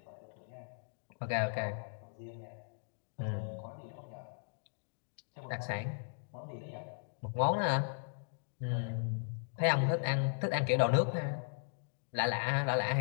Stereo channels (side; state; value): right; silent; digital silence